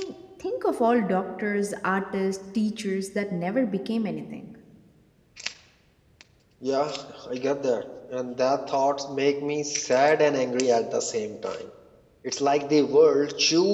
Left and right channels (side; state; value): both; identical; correlation 1.00